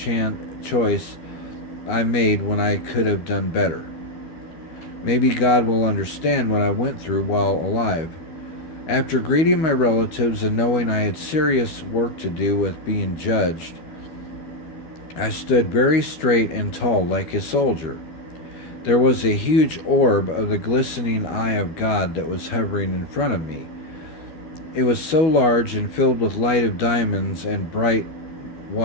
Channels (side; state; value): right; late; 13 ms